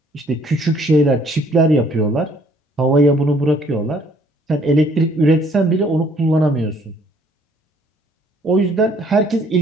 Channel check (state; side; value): normal; both; correlation 0.62